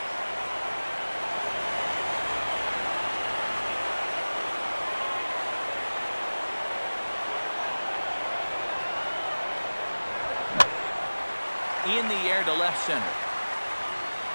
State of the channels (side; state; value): both; inverted; correlation -1.00